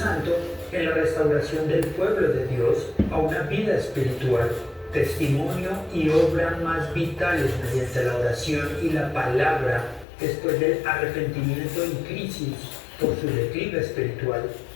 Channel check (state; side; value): drops out; right; at 10.1 s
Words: en la restauración del pueblo de Dios a una vida espiritual, testimonio y obra más vitales mediante la oración y la palabra después del arrepentimiento en crisis por su declive espiritual.